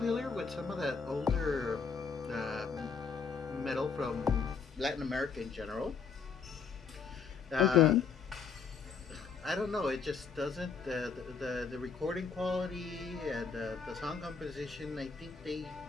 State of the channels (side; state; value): right; quieter; 5.6 dB